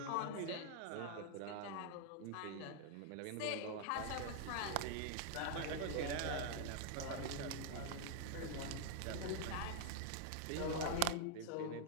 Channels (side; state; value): both; different; correlation -0.01